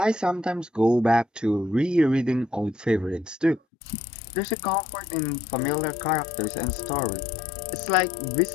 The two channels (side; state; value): right; drops out; at 3.6 s